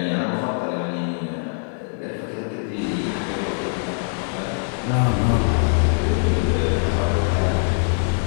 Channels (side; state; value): right; silent; digital silence